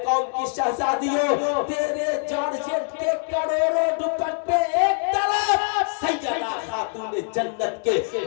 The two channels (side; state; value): right; silent; 57 dB below the other